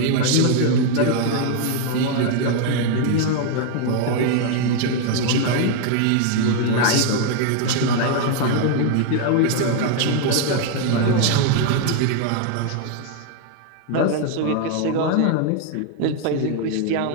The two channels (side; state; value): both; different; correlation 0.00